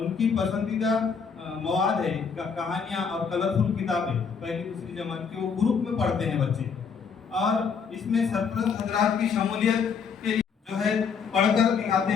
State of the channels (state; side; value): quieter; right; 6.1 dB